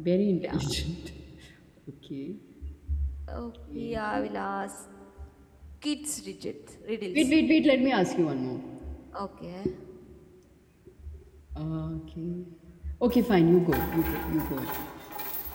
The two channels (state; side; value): identical; both; correlation 1.00